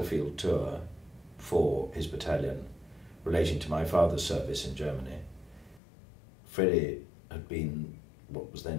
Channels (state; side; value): drops out; right; at 5.8 s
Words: tour for his battalion relating to my father's service in Germany, Freddie had been what was